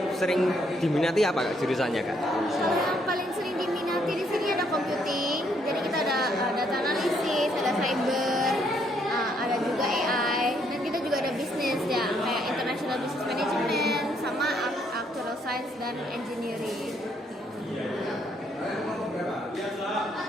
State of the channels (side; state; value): both; normal; correlation 0.71